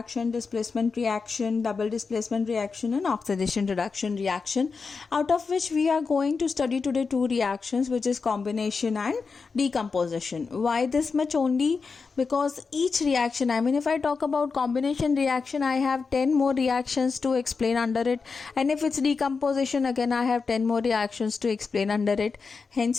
displacement reaction, double displacement reaction, and oxidation reduction reaction, out of which we are going to study today 2 reactions, which is combination and decomposition. Why this much only? Because each reaction, if I talk about combination reaction, I have 10 more reactions to explain under it, and if it's decomposition, again I have 10 more reactions to explain under it.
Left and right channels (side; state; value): right; quieter; 4.8 dB